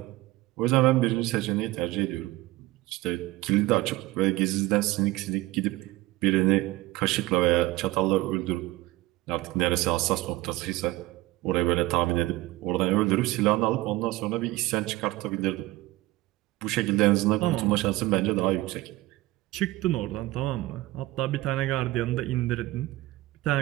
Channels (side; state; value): left; quieter; 18.3 dB